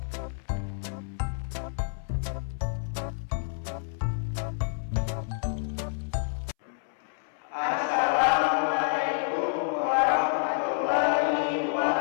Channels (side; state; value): right; silent; 59 dB below the other